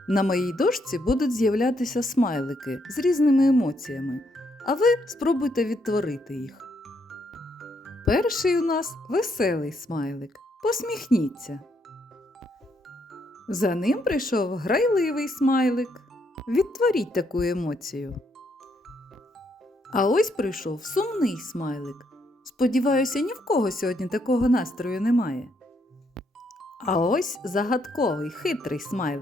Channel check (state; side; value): normal; both; correlation 0.74